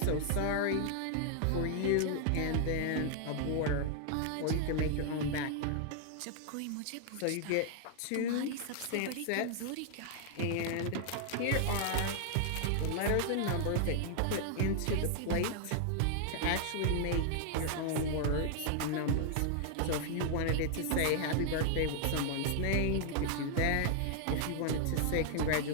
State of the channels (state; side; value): different; both; correlation 0.00